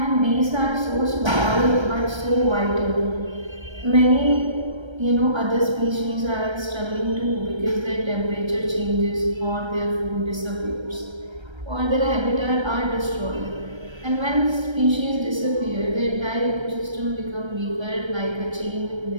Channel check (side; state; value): left; late; 1.3 ms